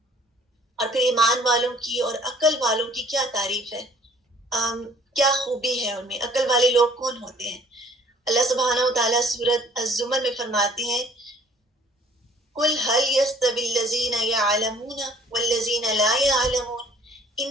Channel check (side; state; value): both; normal; correlation 0.56